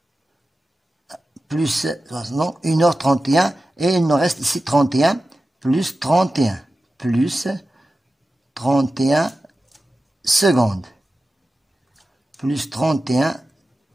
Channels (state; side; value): normal; both; correlation 0.94